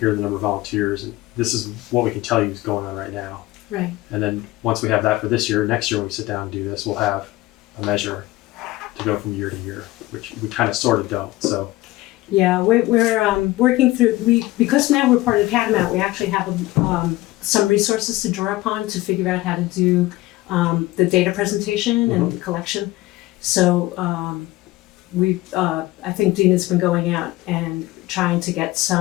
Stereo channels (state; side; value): quieter; right; 18.2 dB